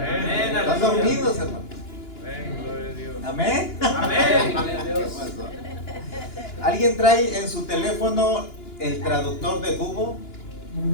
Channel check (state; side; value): late; right; 2.9 ms